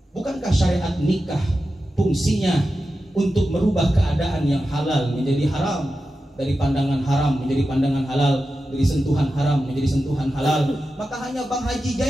Bukankah syariat nikah fungsinya untuk merubah keadaan yang halal menjadi haram, dari pandangan haram menjadi pandangan halal, dari sentuhan haram menjadi sentuhan halal? Maka hanya Bang Haji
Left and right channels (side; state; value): both; normal; correlation 0.92